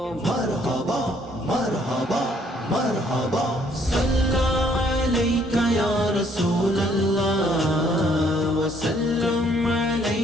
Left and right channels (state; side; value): normal; both; correlation 0.65